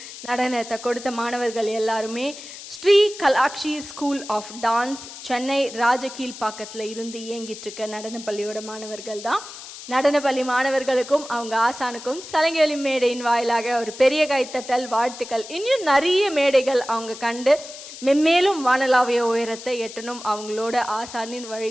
நடனத்தை கொடுத்த மாணவர்கள் எல்லாருமே Sri Kalakshi school of dance Chennai ராஜகீழ்பாக்கத்தில் இருந்து இயங்கிட்டு இருக்க நடனப்பள்ளியோட மாணவர்கள் தான். நடனப்பள்ளி மாணவர்களுக்கும் அவங்க ஆசானுக்கும் சலங்கை மேடையின் வாயிலாக ஒரு பெரிய கைத்தட்டல், வாழ்த்துக்கள். இன்னும் நிறைய மேடைகள் அவங்க கண்டு மென்மேலும் வானலாவிய உயரத்தை எட்டணும் அவங்களோட ஆசானின்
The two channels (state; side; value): noise; left; hiss, 13 dB below the sound